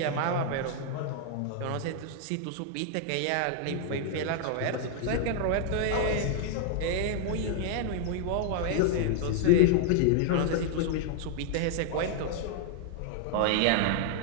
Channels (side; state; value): both; different; correlation 0.00